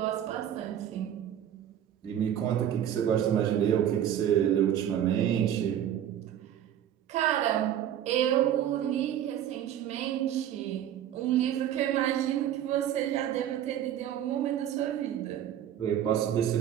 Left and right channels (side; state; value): left; quieter; 10.6 dB